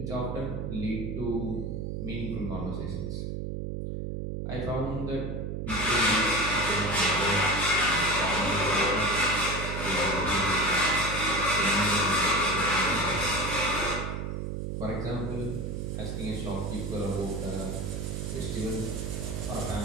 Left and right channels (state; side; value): noise; right; hum, 4 dB below the sound